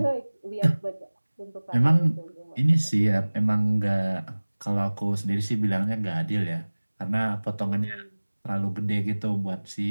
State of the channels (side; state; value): both; inverted; correlation -1.00